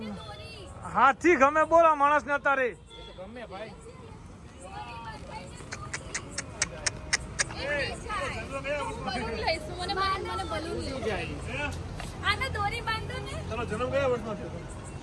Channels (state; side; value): identical; both; correlation 1.00